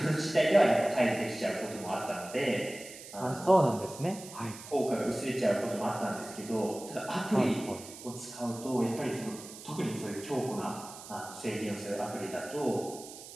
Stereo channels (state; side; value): noise; right; hiss, 14 dB below the sound